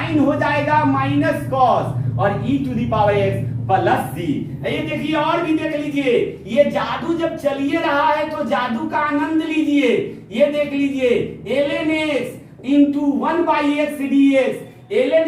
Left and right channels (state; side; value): identical; both; correlation 1.00